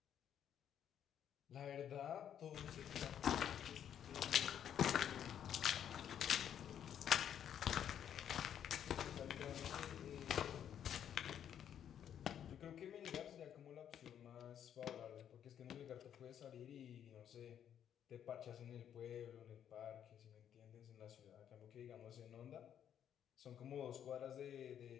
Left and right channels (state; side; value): quieter; right; 9.5 dB